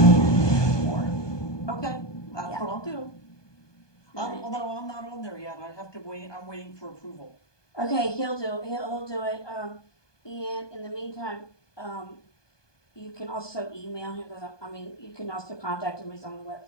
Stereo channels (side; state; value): right; late; 1.2 ms